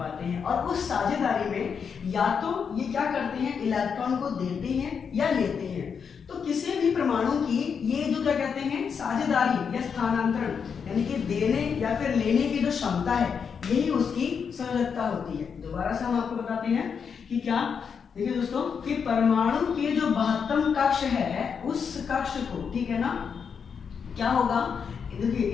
हैं। और उस साझेदारी में या तो ये क्या करते हैं, इलेक्ट्रॉन को देते हैं या लेते हैं। तो किसी भी परमाणु की ये जो क्या कहते हैं, साझेदारी या स्थानांतरण, यानी कि देने या फिर लेने की जो क्षमता है, यही उसकी संयोजकता होती है। दोबारा से हम आपको बताते हैं कि क्या, देखिए दोस्तों, कि परमाणु के जो महत्तम कक्ष है उस कक्ष को, ठीक है ना, क्या होगा, देखिए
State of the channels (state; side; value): quieter; right; 6.5 dB